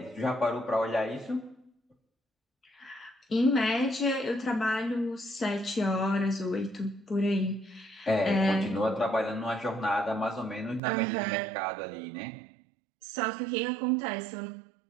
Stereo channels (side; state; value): left; drops out; at 10.8 s